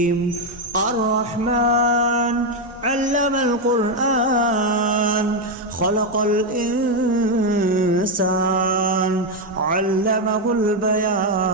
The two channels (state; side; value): normal; both; correlation 0.05